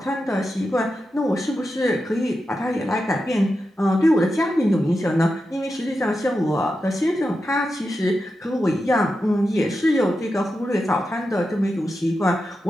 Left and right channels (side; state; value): both; normal; correlation 0.89